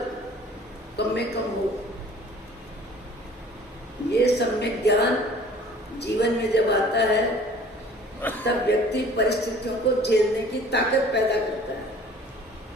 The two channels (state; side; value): normal; both; correlation 0.49